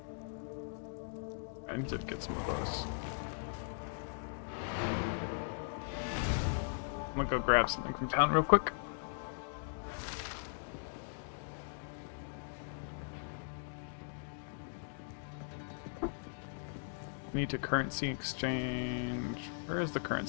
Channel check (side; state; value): right; silent; digital silence